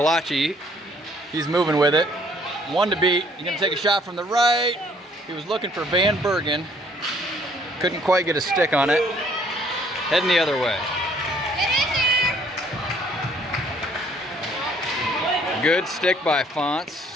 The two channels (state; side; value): normal; both; correlation 0.61